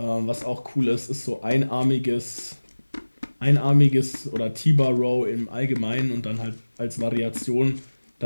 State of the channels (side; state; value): both; inverted; correlation -1.00